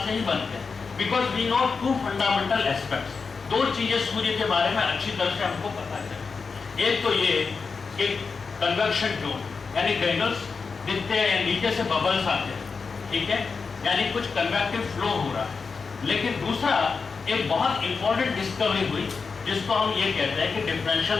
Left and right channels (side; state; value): right; quieter; 5.0 dB